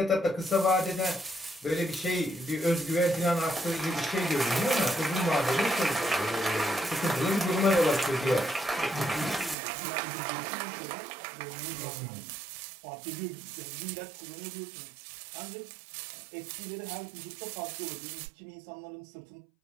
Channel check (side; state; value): left; drops out; at 9.6 s